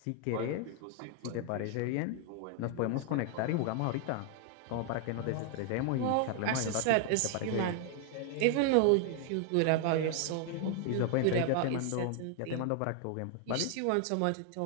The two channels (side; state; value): both; different; correlation 0.00